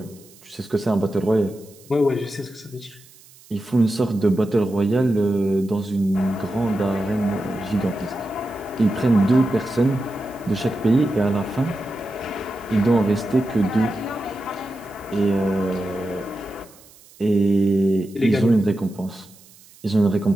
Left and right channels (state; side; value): noise; right; hiss, 25 dB below the sound